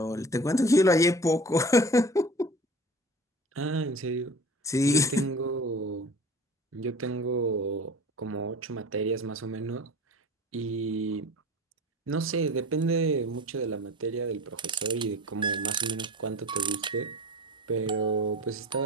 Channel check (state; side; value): normal; both; correlation 0.39